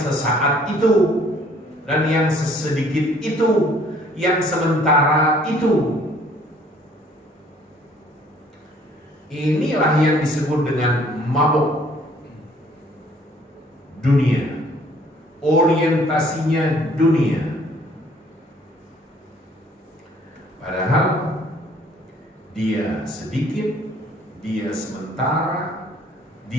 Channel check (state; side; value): normal; both; correlation 0.59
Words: itu dan yang sesedikit itu, yang sementara itu. Inilah yang disebut dengan mabuk dunia, orientasinya dunia. Padahal dia sedikit, dia sementara,